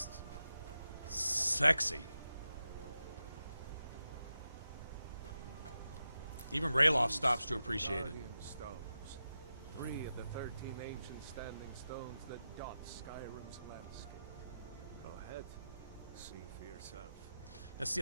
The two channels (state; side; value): inverted; both; correlation -0.90